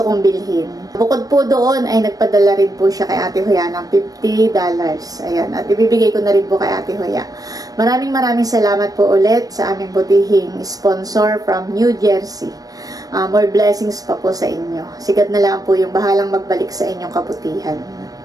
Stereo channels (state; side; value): late; left; 0.18 ms